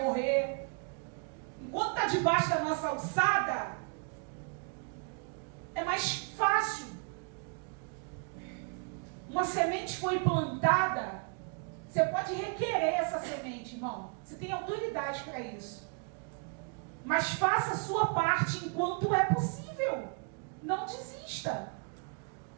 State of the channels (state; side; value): quieter; left; 39.1 dB